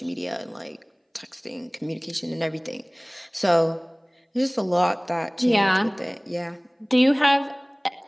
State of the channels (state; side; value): identical; both; correlation 1.00